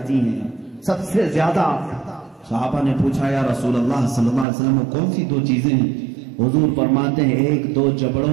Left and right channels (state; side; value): drops out; left; at 4.5 s